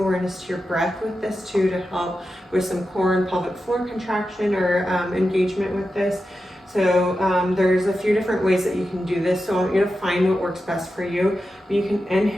to your breath with this too, to help with some core and pelvic floor contraction or engagement with this. So there's a few different ways that you can do this. So I want you to find what works best for you. You can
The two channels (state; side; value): normal; both; correlation 0.91